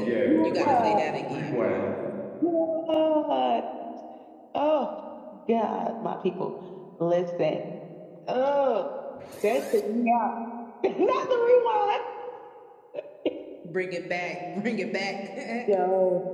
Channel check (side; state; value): both; identical; correlation 1.00